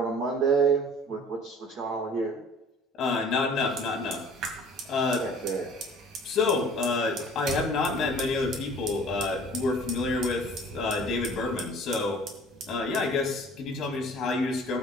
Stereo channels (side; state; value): both; normal; correlation 0.48